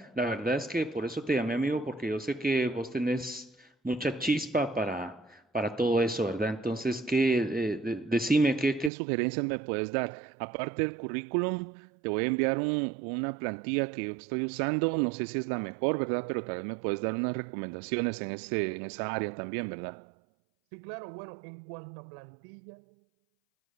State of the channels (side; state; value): left; drops out; at 8.9 s